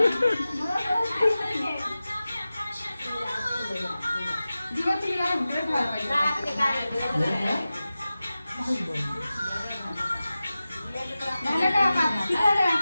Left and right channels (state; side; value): inverted; both; correlation -0.95